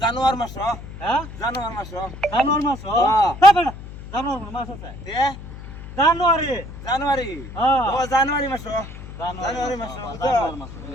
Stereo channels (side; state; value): left; noise; hum, 13 dB below the sound